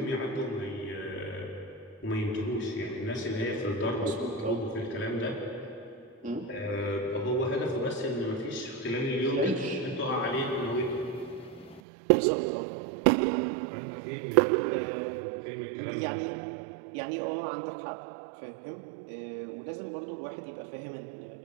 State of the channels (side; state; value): left; drops out; at 11.8 s